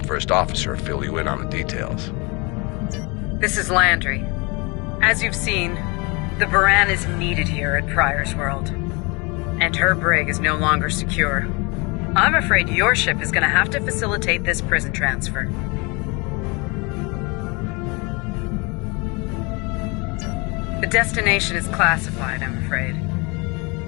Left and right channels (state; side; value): quieter; right; 28.8 dB